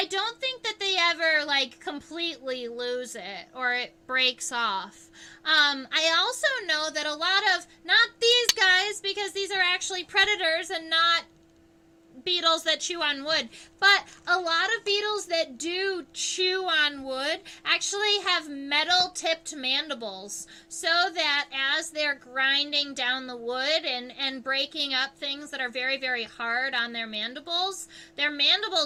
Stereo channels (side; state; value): both; identical; correlation 1.00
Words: don't think that they ever, like, completely lose it or it breaks off. I also know that a lot of, not these guys, because these are actually predators and not beetles that chew on wood, but a lot of beetles that do chew on wood actually have metal-tipped mandibles, so that as they're grinding down the wood and breaking up things that are very, very hard on their mandibles